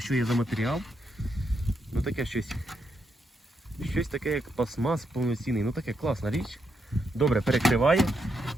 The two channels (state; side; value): normal; both; correlation 0.80